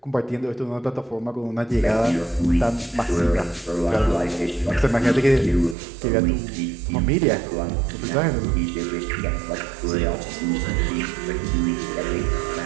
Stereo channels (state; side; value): drops out; left; at 5.8 s